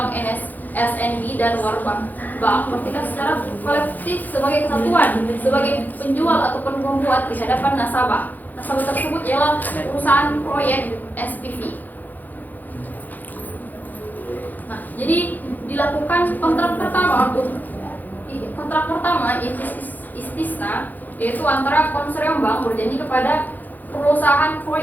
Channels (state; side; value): late; right; 0.084 ms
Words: (SNB), dan Warbank Bank bertindak secara kolektif sebagai kesatuan, sebagai penjual ataupun pembuat di hadapan nasabah. Nasabah tersebut ialah perusahaan proyek SPV. Nah, jadi dilakukan kontrak pertama istisna, yaitu antara konsorsium bank berjanji kepada perusahaan